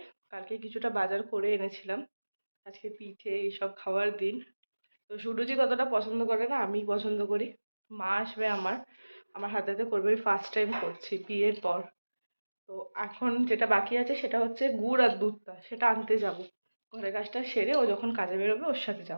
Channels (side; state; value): both; inverted; correlation -1.00